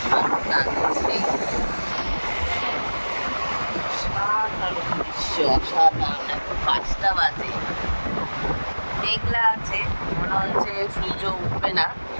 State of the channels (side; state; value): both; inverted; correlation -1.00